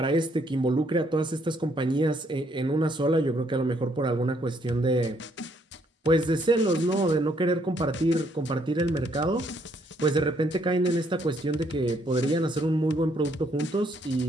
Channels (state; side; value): normal; both; correlation 0.70